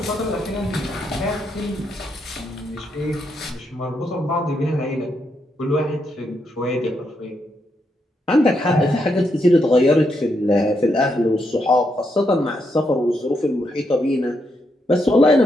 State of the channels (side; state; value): both; normal; correlation 0.80